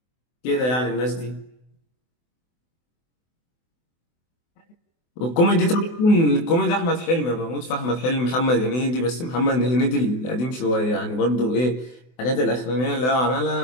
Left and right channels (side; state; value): right; late; 24 ms